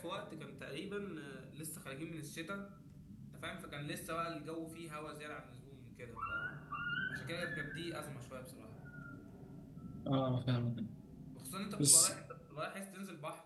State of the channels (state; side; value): identical; both; correlation 1.00